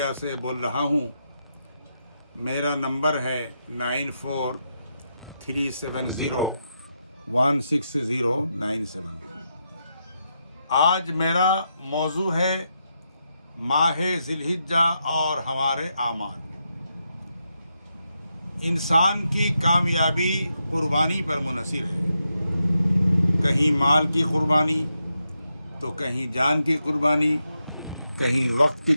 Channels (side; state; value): both; inverted; correlation -0.84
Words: سے بول رہا ہوں۔ میرا نمبر ہے 9437016097۔ آج میرا موضوع ہے ماہ ذی الحجہ اور ہمارے اعمال۔ انسان کی کامیابی قربانی پر منحصر ہے، کہیں مال کی قربانی تو کہیں جان کی قربانی، کہیں وقت کی